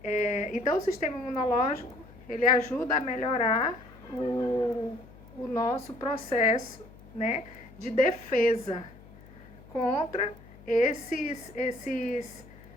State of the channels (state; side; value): noise; left; hum, 21 dB below the sound